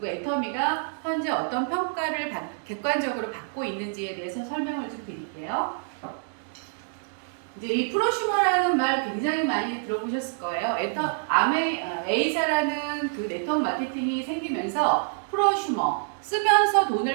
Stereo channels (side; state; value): left; silent; digital silence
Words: 애터미가 현재 어떤 평가를 객관적으로 받고 있는지에 대해서 설명을 좀 드릴게요. 이제 이 프로슈머라는 말 굉장히 많이 들어보셨을 거예요. A사라는 그 네트워크 마케팅이 생기면서 프로슈머, 쓰면서